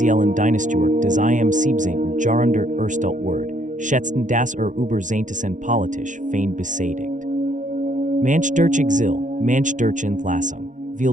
Dynastiewerk des im Siebzigtausend Jahrhundert erstellt Word, schätzten das über Zehntausend politisch fein besädigt. Manch durch Exil, manch durch Entlassung, viel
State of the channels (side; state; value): left; late; 0.37 ms